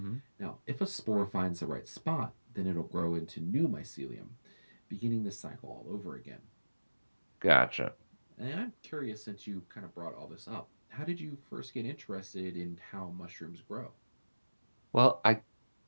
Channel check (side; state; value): both; inverted; correlation -1.00